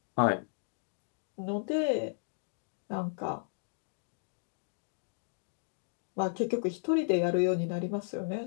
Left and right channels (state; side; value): silent; right; digital silence